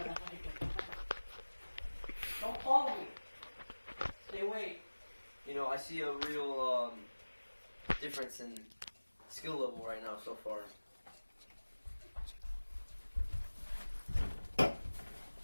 Don't follow me. Stay away. You know, I see a real difference in skill level right now so far.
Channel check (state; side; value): inverted; both; correlation -1.00